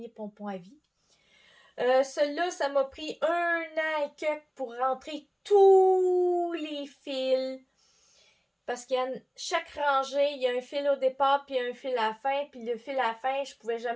pompons à vie. Celui-là, ça m'a pris 1 an et quelques pour rentrer tous les fils. Parce qu'il y a chaque rangée, il y a un fil au départ puis un fil à la fin. Puis le fil à la fin, je pouvais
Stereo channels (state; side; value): identical; both; correlation 1.00